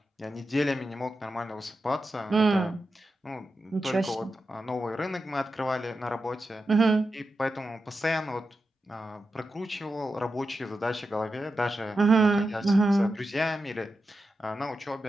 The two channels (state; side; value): normal; both; correlation 0.90